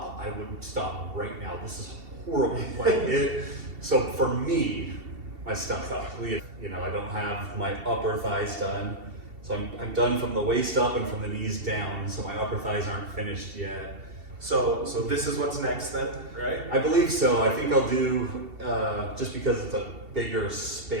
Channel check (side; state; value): left; late; 2.7 ms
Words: I would stop right now. This is horrible. So for me, my stomach, you know, I don't have my upper thighs done. So I'm done from the waist up and from the knees down. So my upper thighs aren't finished yet. So this is what's next then, right? I believe so. I think I'll do, just because it's a bigger